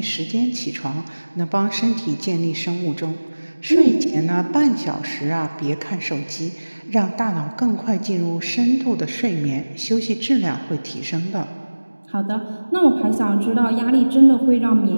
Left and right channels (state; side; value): inverted; both; correlation -1.00